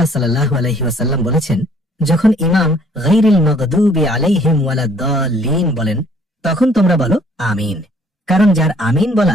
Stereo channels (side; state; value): both; normal; correlation 0.60